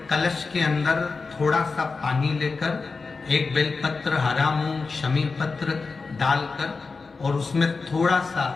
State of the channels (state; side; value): quieter; right; 4.3 dB